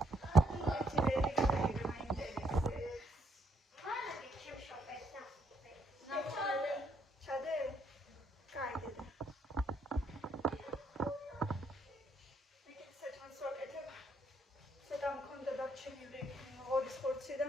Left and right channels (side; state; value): both; normal; correlation 0.71